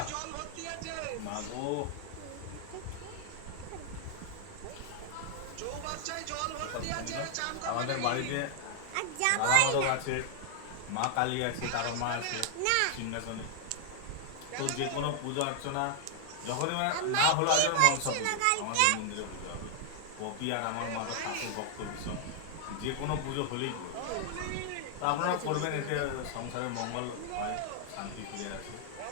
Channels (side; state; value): both; different; correlation 0.00